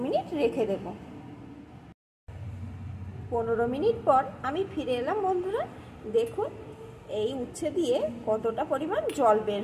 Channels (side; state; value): both; identical; correlation 1.00